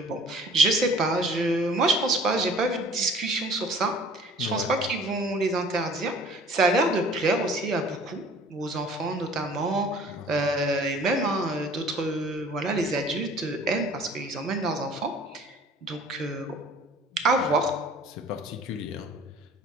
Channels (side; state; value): both; normal; correlation 0.51